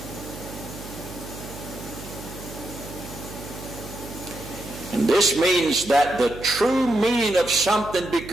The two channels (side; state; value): right; noise; hum, 13 dB below the sound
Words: And this means that the true meaning of something